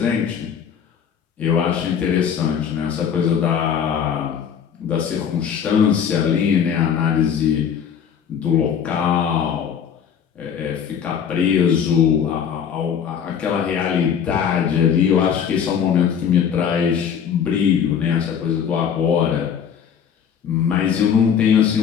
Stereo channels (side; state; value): right; quieter; 7.8 dB